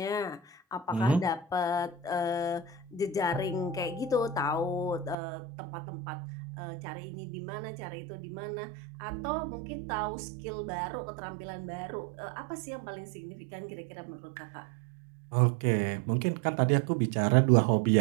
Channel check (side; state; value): left; drops out; at 5.2 s